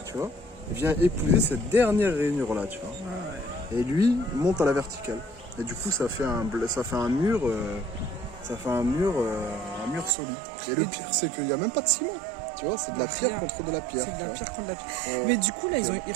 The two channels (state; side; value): drops out; left; at 10.2 s